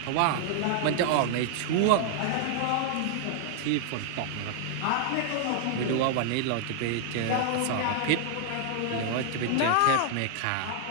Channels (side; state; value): both; different; correlation -0.01